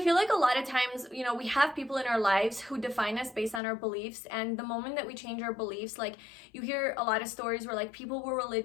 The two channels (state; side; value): drops out; right; at 3.6 s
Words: like a lot of times, you know, we have people in our lives who define us based on our beliefs. And the moment that we change our beliefs, like you hear a lot of stories where like people were